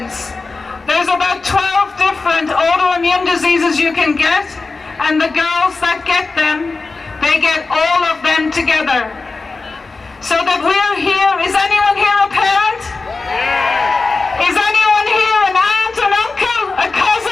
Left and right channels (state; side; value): quieter; right; 3.9 dB